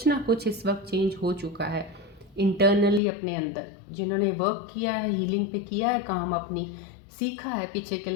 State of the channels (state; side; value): drops out; right; at 3.0 s